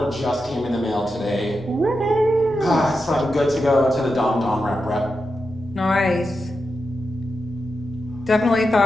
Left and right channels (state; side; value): normal; both; correlation 0.88